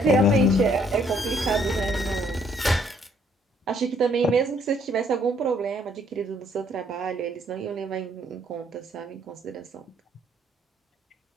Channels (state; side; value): normal; both; correlation 0.66